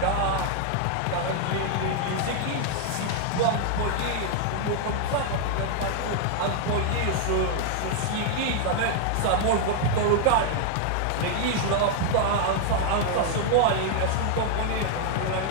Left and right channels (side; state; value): both; different; correlation 0.00